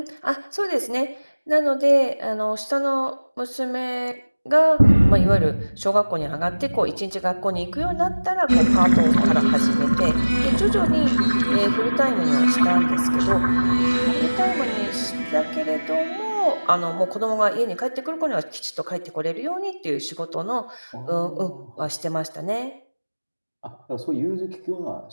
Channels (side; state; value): both; inverted; correlation -1.00